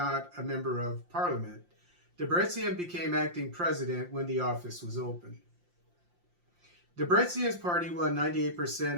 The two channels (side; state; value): left; late; 5.7 ms